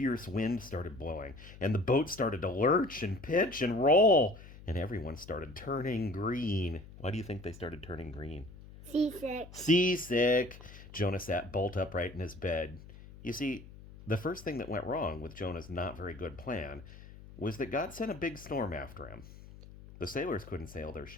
wind started blowing, and the boat started to lurch and pitch and roll, and everyone started turning green. Why do you think they started turning green? Seasick. Seasick. Jonah sat bolt upright in his bed. You see, the first thing that went wrong with Jonah's not very good plan was that God sent a big storm after him. The sailors couldn't sail their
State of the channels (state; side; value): noise; left; hum, 17 dB below the sound